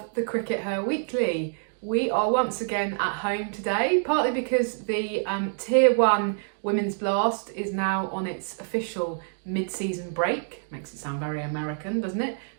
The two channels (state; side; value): silent; left; digital silence